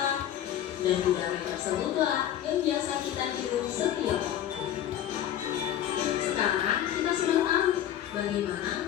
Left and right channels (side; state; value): right; quieter; 11.1 dB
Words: dan udara tersebutlah yang biasa kita hirup setiap hari. Sekarang kita sudah tahu bagaimana